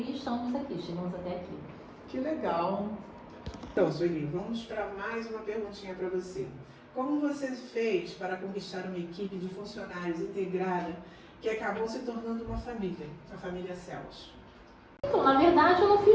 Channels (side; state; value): both; identical; correlation 1.00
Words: estamos aqui, chegamos até aqui. Que legal. Então, Sueli, vamos para mais uma perguntinha para você. Como você fez para conquistar uma equipe de funcionários integrada que acabou se tornando uma família, a família Céus? Então, na verdade, eu não